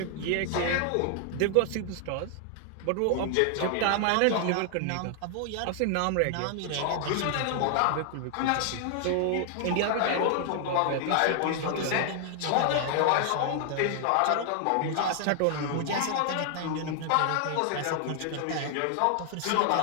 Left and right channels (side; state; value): both; different; correlation 0.00